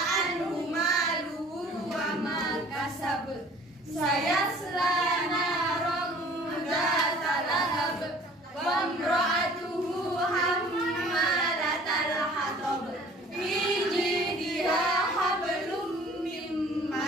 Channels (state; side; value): normal; both; correlation 0.51